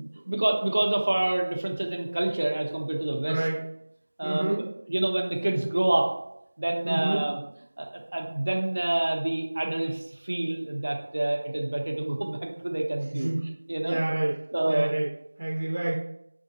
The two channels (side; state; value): both; inverted; correlation -1.00